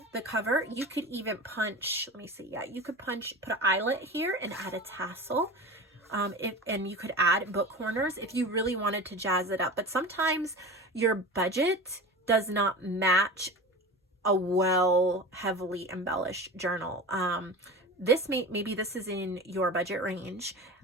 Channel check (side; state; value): both; normal; correlation 0.31